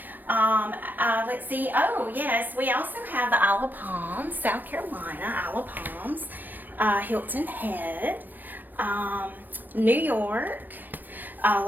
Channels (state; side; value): late; left; 0.087 ms